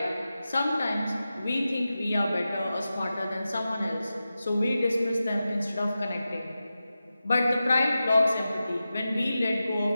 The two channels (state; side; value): inverted; both; correlation -0.93